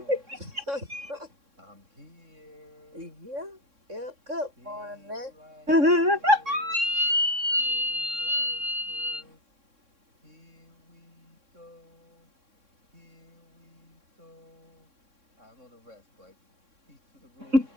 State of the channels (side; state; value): left; late; 3.6 ms